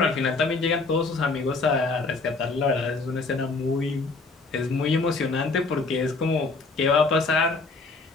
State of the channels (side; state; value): right; quieter; 3.8 dB